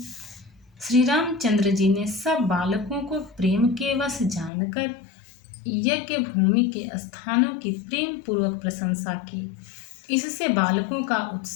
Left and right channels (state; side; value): drops out; right; at 4.5 s